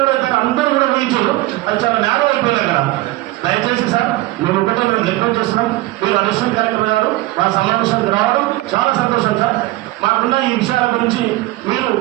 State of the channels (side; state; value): left; quieter; 18.3 dB